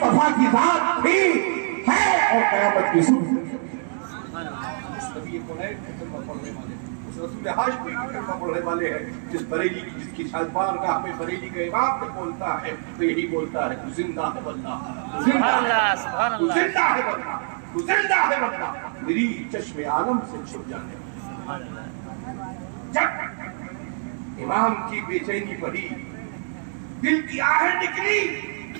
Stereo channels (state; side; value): silent; left; 62 dB below the other